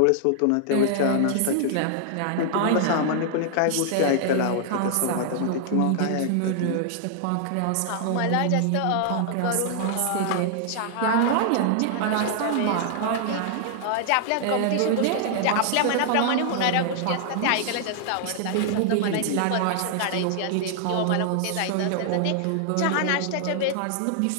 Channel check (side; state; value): both; different; correlation -0.01